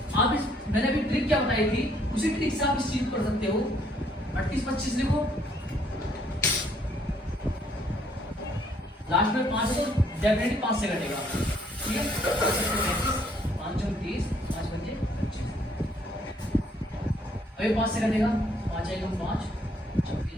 आप मैंने अभी ट्रिक क्या बताई थी, उसी ट्रिक से आप इस चीज कर सकते हो। 3825 लिखो, लास्ट में 5 है तो डेफिनेटली 5 से कटेगा, ठीक है। 5 30, 5 5 25, अभी 5 से कटेगा, 5 1 5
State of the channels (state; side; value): normal; both; correlation 0.66